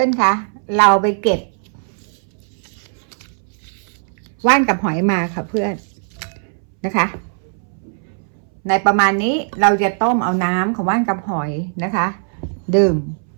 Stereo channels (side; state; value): left; silent; 64 dB below the other